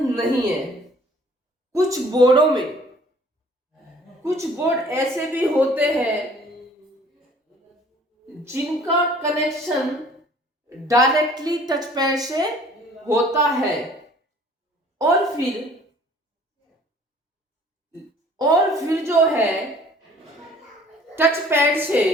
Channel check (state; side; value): normal; both; correlation 0.53